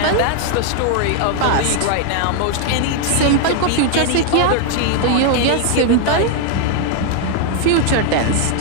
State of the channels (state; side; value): different; both; correlation 0.00